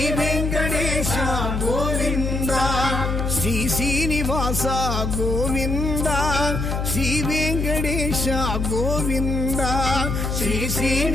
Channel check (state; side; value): noise; left; hum, 1 dB below the sound